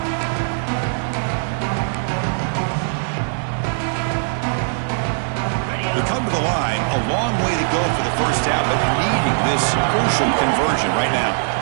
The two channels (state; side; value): silent; left; 65 dB below the other